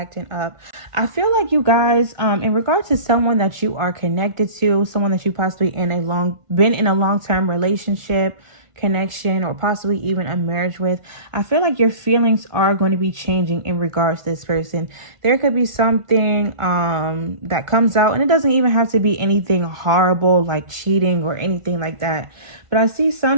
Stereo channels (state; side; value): late; left; 1.5 ms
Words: up. I feel like you guys, in regard to someone that you are connected to, someone that you possibly been in a long-term relationship, connection, or possibly even a marriage with, I feel like your feelings are going to be changing in regards to this person. There could be something that comes out, and it doesn't even have to be anything horrible like cheating or anything like that. But I see